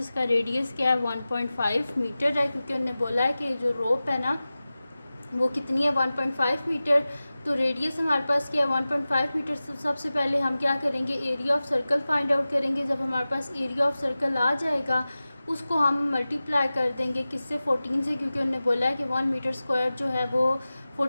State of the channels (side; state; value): both; inverted; correlation -0.96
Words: रेडियस क्या है 1.5 मीटर है, क्योंकि उन्होंने बोला है कि जो रोप है ना वो कितनी है 1.5 मीटर। तो रेडियस हमारे पास क्या है 1.5 मीटर। सबसे पहले हम क्या करेंगे, area of circle find out करेंगे। जब हमारे पास एरिया ऑफ सर्कल आ जाएगा उसको हम मल्टीप्लाई कर देंगे किससे, 14 से, क्योंकि उन्होंने बोला है कि 1 मीटर स्क्वायर जो है वो